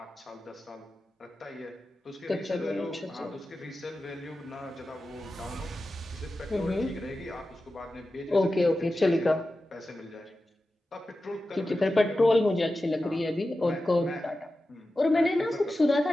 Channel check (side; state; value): both; normal; correlation 0.93